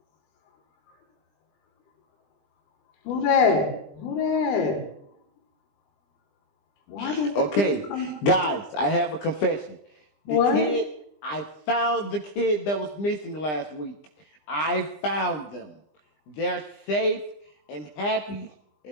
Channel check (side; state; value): right; late; 20 ms